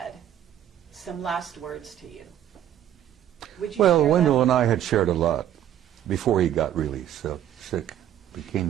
some last words to you. Would you Well, share Wendell that? and I had shared a lot before he got really sick, became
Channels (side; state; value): left; quieter; 11.1 dB